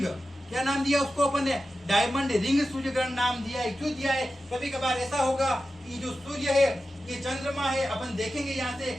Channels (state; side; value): normal; both; correlation 0.93